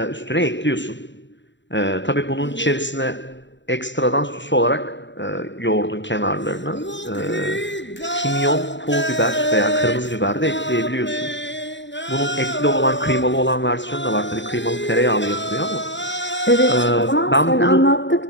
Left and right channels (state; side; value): late; right; 0.53 ms